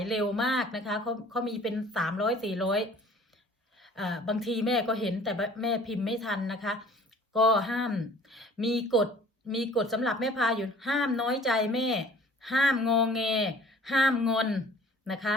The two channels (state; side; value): normal; both; correlation 0.51